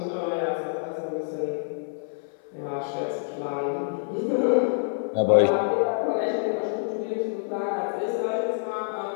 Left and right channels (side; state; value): right; silent; 60 dB below the other